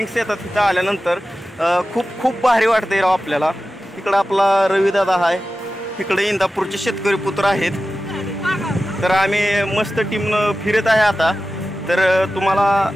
येतात तिथं आल्यानंतर. खूप खूप भारी वाटतंय राव आपल्याला. इकडं आपला रविदादा आहे, इकडे इंदापूरचे शेतकरी पुत्र आहेत. तर आम्ही मस्त टीमनं फिरत आहे आता. तर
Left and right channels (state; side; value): normal; both; correlation 0.94